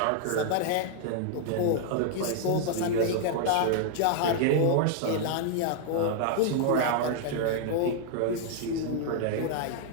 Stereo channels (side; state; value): both; different; correlation 0.00